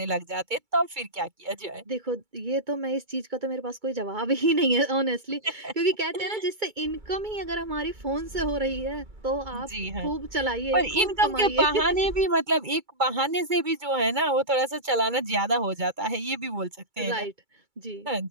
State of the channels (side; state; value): left; late; 2.3 ms